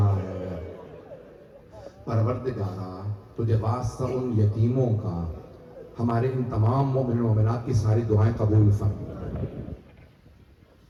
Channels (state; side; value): identical; both; correlation 1.00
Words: ہیں؟ پروردگارا تجھے واسطہ ان یتیموں کا ہمارے ان تمام مومن و مومنات کی ساری دعائیں قبول فرما۔